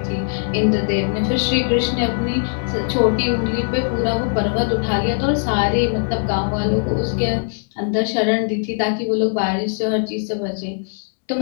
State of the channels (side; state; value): right; silent; 66 dB below the other